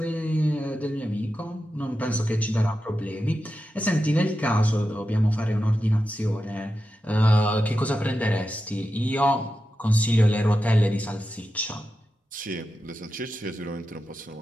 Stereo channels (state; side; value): normal; both; correlation 0.90